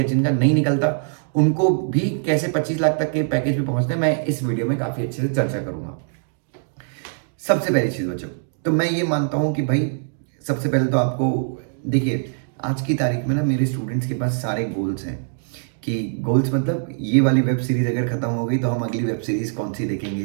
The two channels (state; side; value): silent; left; digital silence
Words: जिनका नहीं निकलता, उनको भी कैसे 25 लाख तक के पैकेज पे पहुंचते हैं, मैं इस वीडियो में काफी अच्छे से चर्चा करूंगा। सबसे पहली चीज बच्चों, तो मैं ये मानता हूं कि भाई, सबसे पहले तो आपको देखिए, आज की तारीख में ना मेरे स्टूडेंट्स के पास सारे गोल्स हैं। कि गोल्स मतलब, ये वाली वेब सीरीज अगर खत्म हो गई तो हम अगली वेब सीरीज कौन सी